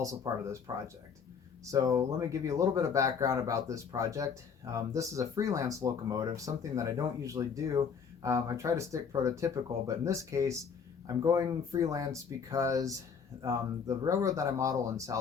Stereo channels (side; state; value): right; quieter; 6.4 dB